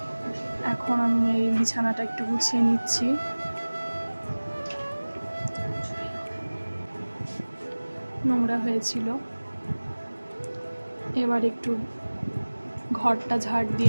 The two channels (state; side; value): inverted; both; correlation -1.00